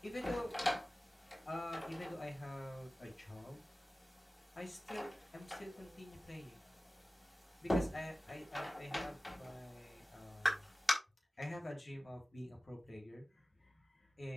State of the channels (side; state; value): both; normal; correlation 0.97